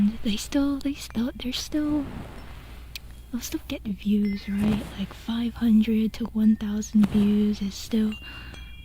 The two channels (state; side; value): identical; both; correlation 1.00